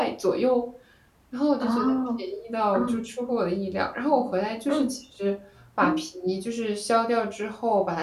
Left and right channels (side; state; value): both; identical; correlation 1.00